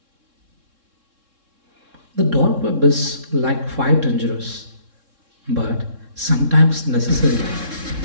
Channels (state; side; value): late; left; 3.7 ms